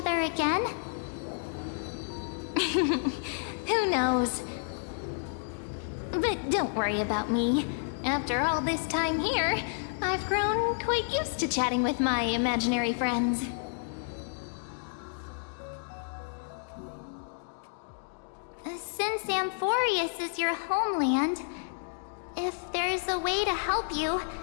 again? Who knows? But don't worry about me. After all this time here, I've grown quite used to chatting with my imaginary friends. Since Amphorius is your homeland, if there's a way to help you,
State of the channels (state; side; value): silent; right; digital silence